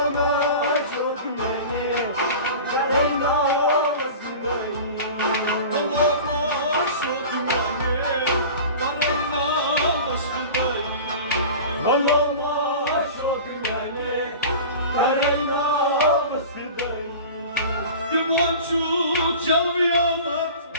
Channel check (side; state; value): both; inverted; correlation -0.36